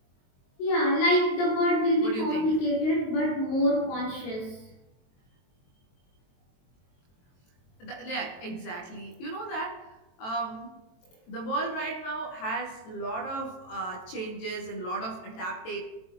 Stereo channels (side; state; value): right; late; 23 ms